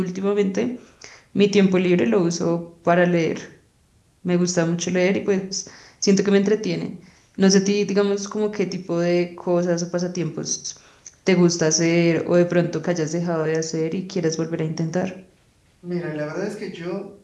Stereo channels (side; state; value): both; identical; correlation 1.00